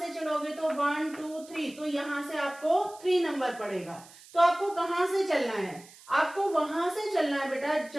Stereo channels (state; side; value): noise; right; hiss, 22 dB below the sound